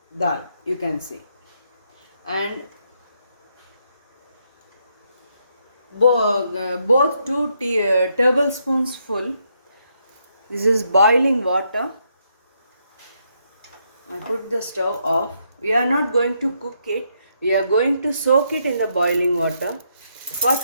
dal, you can see. And both two tablespoons full. This is boiling water. I put the stove off. We are not going to cook it. We are going to soak it in the boiling water for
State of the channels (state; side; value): inverted; both; correlation -0.77